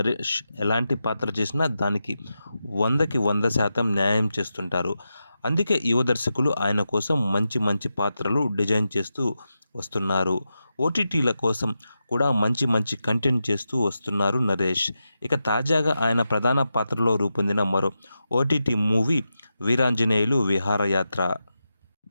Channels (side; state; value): both; inverted; correlation -0.89